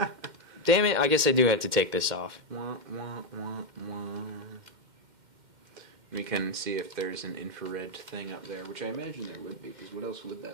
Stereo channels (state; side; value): late; left; 2.1 ms